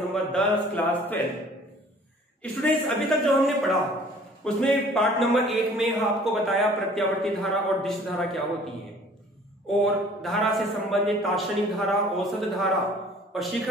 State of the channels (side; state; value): both; normal; correlation 0.52